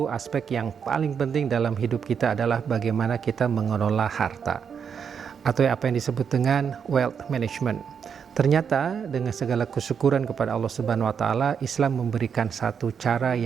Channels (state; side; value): quieter; left; 7.0 dB